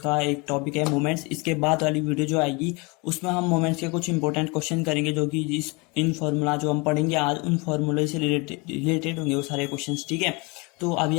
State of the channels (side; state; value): right; quieter; 28.0 dB